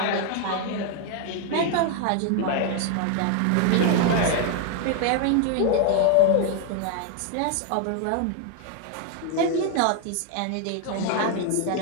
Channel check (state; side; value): different; both; correlation 0.00